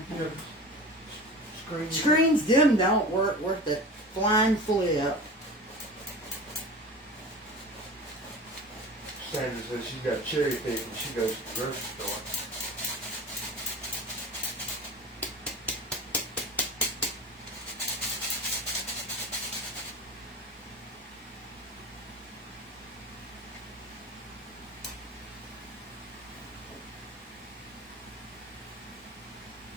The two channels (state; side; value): normal; both; correlation 0.34